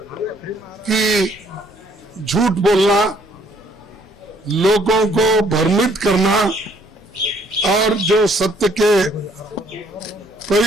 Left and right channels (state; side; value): normal; both; correlation 0.64